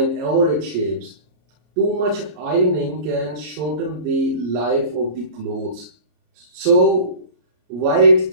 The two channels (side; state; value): left; late; 33 ms